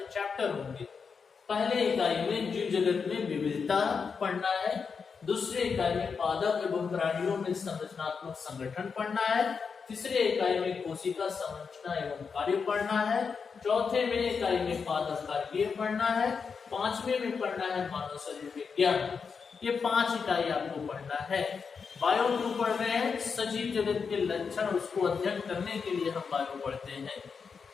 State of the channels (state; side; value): quieter; right; 5.6 dB